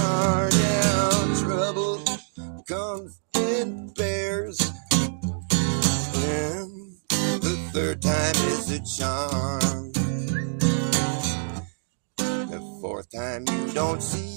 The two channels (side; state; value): left; silent; digital silence